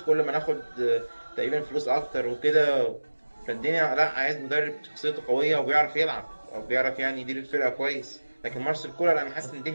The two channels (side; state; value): both; inverted; correlation -1.00